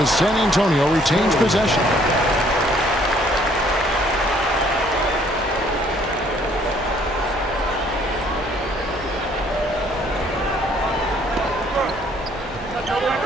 San Antonio retains possession.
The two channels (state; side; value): normal; both; correlation 0.62